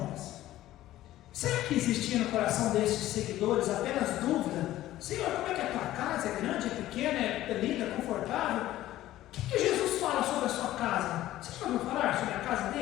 Será que existia no coração desses seguidores apenas dúvida? Senhor, como é que é a tua casa? É grande, é pequena, é linda, é confortável? O que Jesus fala sobre a sua casa? Você já ouviu falar sobre a casa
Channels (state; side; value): quieter; right; 14.6 dB